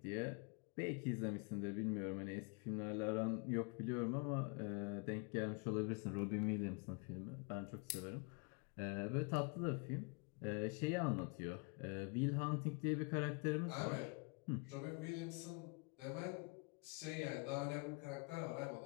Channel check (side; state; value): right; quieter; 32.6 dB